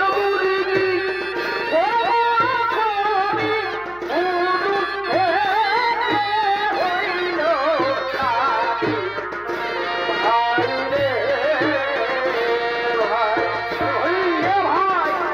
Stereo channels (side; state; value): left; noise; hum, 26 dB below the sound